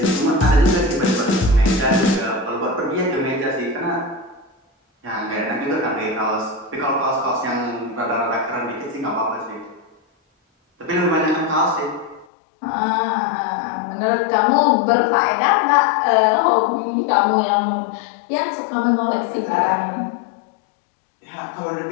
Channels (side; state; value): right; drops out; at 12.2 s